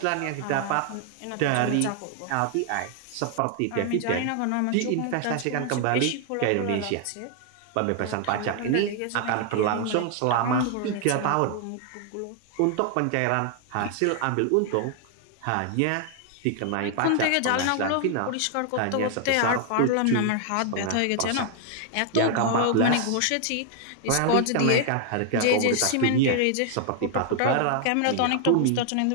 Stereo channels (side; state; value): both; different; correlation 0.00